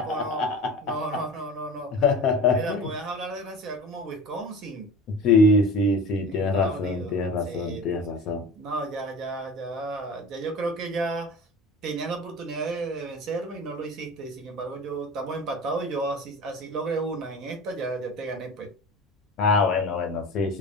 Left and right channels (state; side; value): normal; both; correlation 0.36